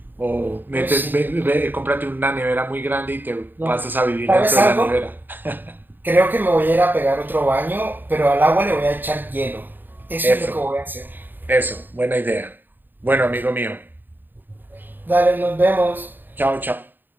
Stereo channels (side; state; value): left; late; 0.092 ms